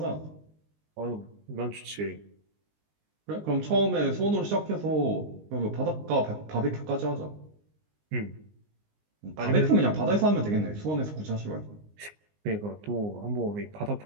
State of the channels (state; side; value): late; left; 19 ms